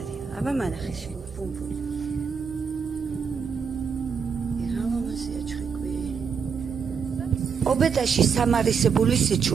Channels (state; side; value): quieter; left; 6.3 dB